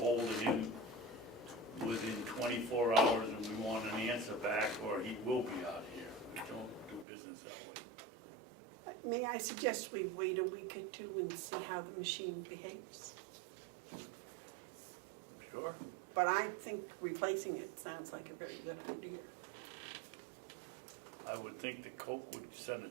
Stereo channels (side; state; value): left; drops out; at 7.1 s